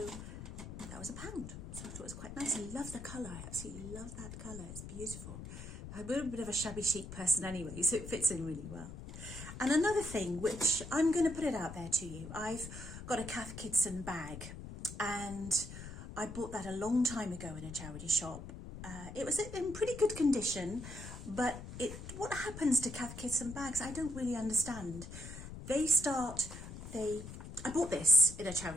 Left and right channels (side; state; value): left; noise; rumble, 10 dB below the sound